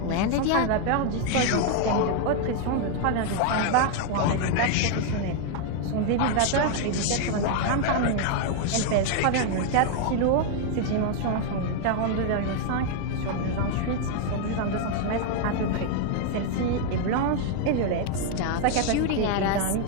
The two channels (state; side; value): different; both; correlation 0.00